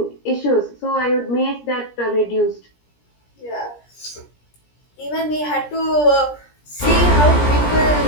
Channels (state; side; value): late; right; 17 ms